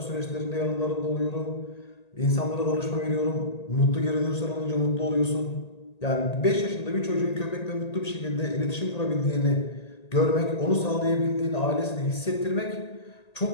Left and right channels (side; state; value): right; late; 1.8 ms